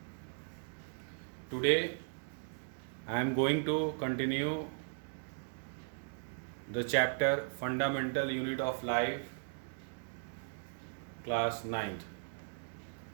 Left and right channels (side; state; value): left; silent; digital silence